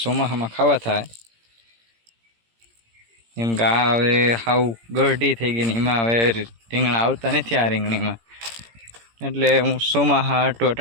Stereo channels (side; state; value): left; late; 17 ms